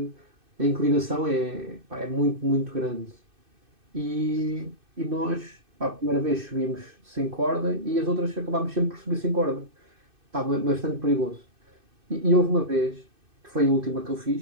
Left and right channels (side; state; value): left; late; 2.6 ms